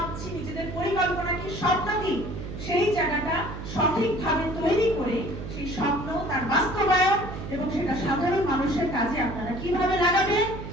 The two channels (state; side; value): noise; right; hum, 9 dB below the sound